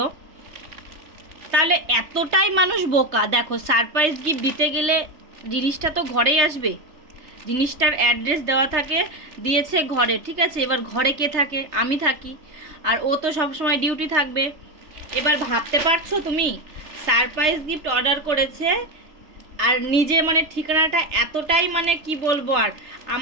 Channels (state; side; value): late; left; 3.2 ms